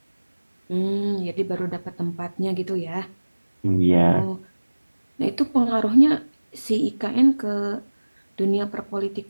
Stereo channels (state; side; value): inverted; both; correlation -1.00